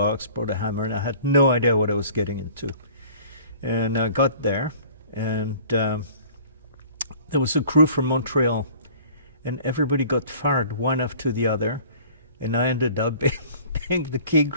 brought a hammer, and I had no idea what I was getting into. And I got there, and there was a crew from Montreal, and everybody got fired one after the other, and I ended up being the key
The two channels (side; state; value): both; inverted; correlation -0.49